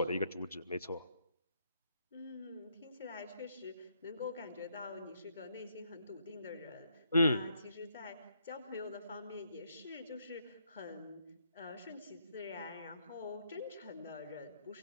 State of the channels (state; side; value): inverted; both; correlation -0.74